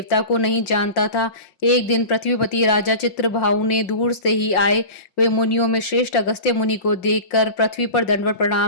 को नहीं जानता था। एक दिन पृथ्वीपति राजा चित्रभाऊ ने दूर से ही आए वे मुनियों में श्रेष्ठ अगस्त्य मुनि को देखकर पृथ्वी पर दंडवत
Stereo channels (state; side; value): late; right; 5.6 ms